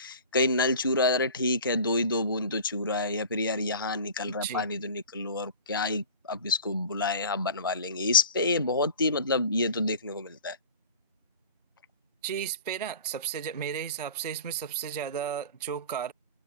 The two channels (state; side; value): inverted; both; correlation -0.39